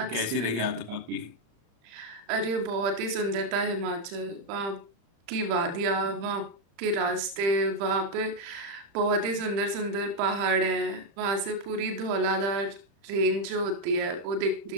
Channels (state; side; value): late; left; 35 ms